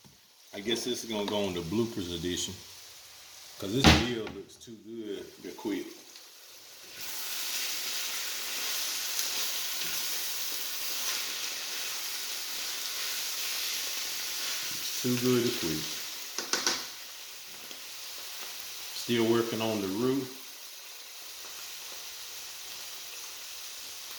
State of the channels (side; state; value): both; identical; correlation 1.00